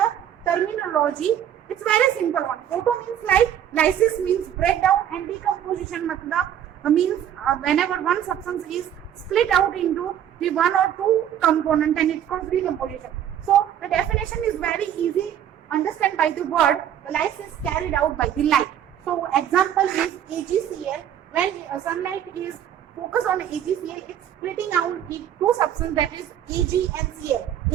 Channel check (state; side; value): quieter; left; 10.2 dB